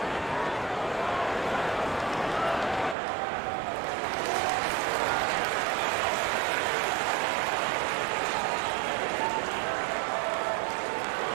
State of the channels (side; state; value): left; drops out; at 3.0 s